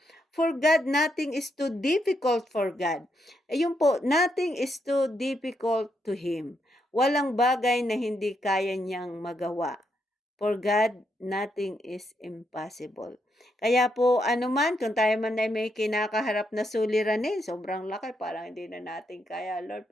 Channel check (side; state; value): both; normal; correlation 0.79